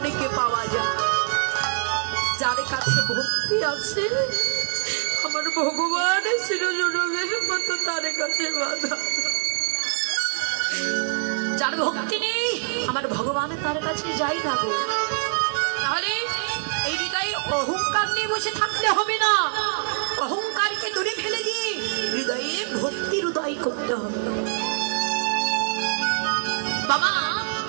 পাওয়া যায়। যার কাছে ভক্তি আছে আমার ভগবান শিরোজনমের মতো তার কাছে বাধা, যার ভক্তি নেই আমার ভগবান তার কাছে যাই না গো। তাহলে এই হৃদয়ে অহংকার নিয়ে বসে থাকলে হবে না, অহংকারকে দূরে ফেলে দিয়ে হৃদয়ে ভক্তির উদয় করতে হবে। বাবা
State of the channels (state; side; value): silent; left; 56 dB below the other